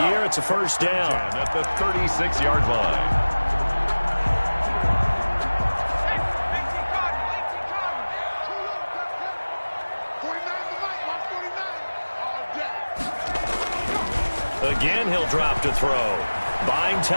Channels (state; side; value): inverted; both; correlation -1.00